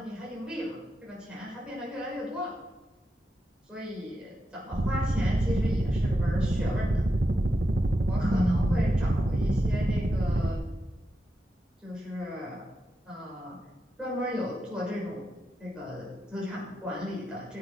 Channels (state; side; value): normal; both; correlation 0.87